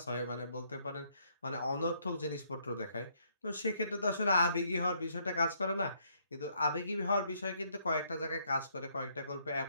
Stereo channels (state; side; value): inverted; both; correlation -0.70